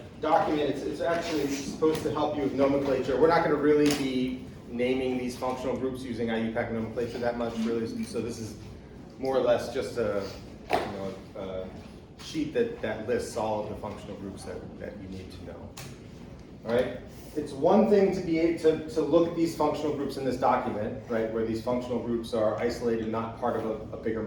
document. It's actually supposed to help you with nomenclature. We're not going to really be naming these functional groups using IUPAC nomenclature that much, really. So this is more or less just a sheet that lists all of the functional groups that you need to know. All right. It's one thing to be able to look at these functional groups in this document, right, where these functional groups are isolated, not part of a bigger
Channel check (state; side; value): identical; both; correlation 1.00